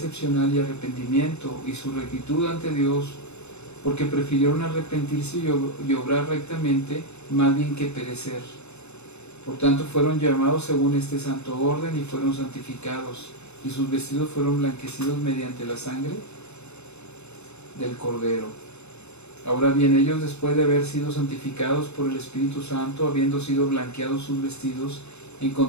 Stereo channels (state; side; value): late; right; 0.81 ms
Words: y arrepentimiento y su rectitud ante Dios, porque prefirieron arrepentirse y obrar rectamente más bien que perecer. Por tanto fueron llamados según este santo orden y fueron santificados, y sus vestidos fueron blanquecidos mediante la sangre del Cordero. Ahora bien, ellos, después de haber sido santificados por el Espíritu Santo, habiendo sido blanqueados sus vestidos,